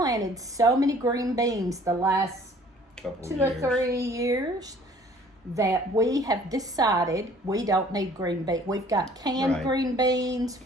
so many green beans the last Couple 2 years. or 3 years that we have decided we don't need green beans. We've got canned Right. green beans,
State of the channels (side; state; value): both; normal; correlation 0.54